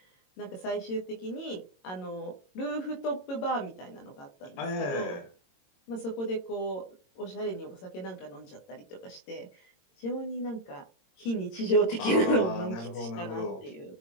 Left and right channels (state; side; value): late; right; 22 ms